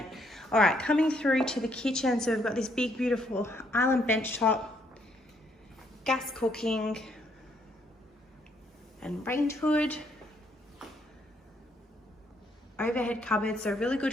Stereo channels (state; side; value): normal; both; correlation 0.71